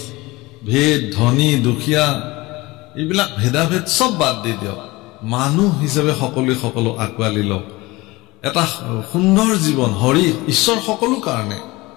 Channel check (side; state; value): right; quieter; 21.7 dB